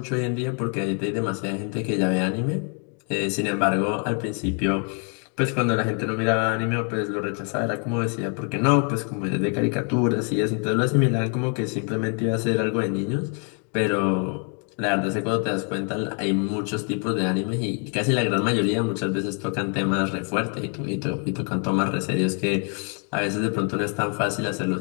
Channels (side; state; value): right; quieter; 39.5 dB